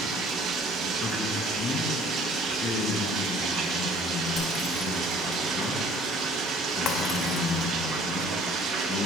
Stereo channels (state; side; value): normal; both; correlation 0.53